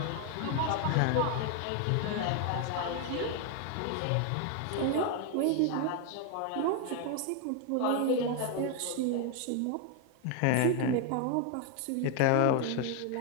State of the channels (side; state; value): both; different; correlation 0.01